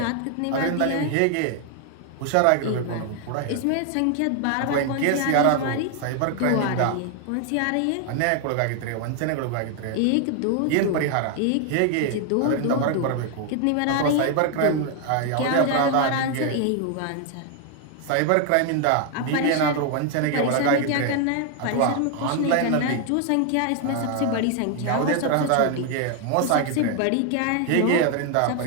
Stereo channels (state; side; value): different; both; correlation 0.00